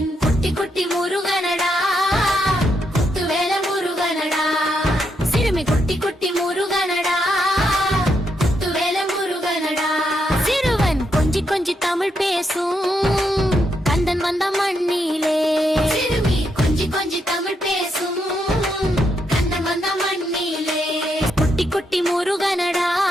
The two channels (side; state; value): both; normal; correlation 0.80